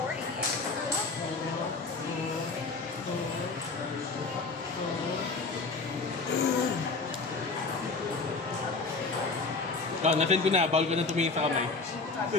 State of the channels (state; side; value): quieter; right; 4.0 dB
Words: Nasend ko na. Bawal ko na tumingin sa kamay.